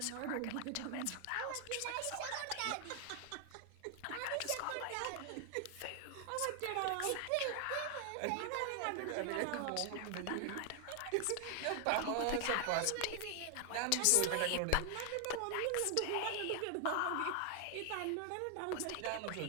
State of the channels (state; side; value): different; both; correlation 0.00